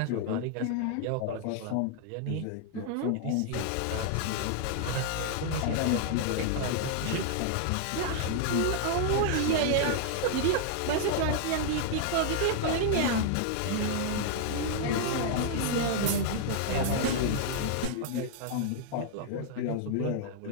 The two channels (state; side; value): different; both; correlation -0.01